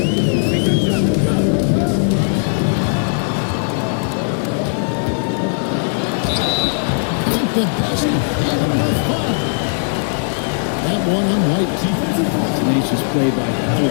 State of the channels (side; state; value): right; silent; digital silence